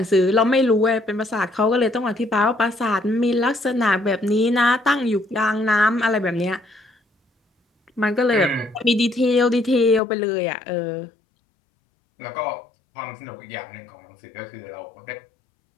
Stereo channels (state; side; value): drops out; right; at 10.0 s